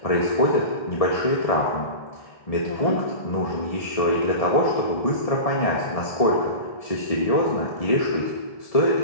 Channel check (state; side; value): late; right; 1.7 ms